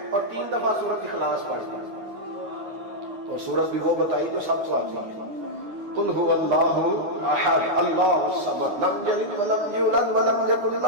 اور 3 دفعہ سورۃ اخلاص پڑھ دی۔ اور سورت بھی وہ بتائی جو سب کو آتی ہے، قل هو اللہ احد اللہ الصمد لم یلد ولم یولد ولم یکن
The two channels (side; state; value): left; late; 9.7 ms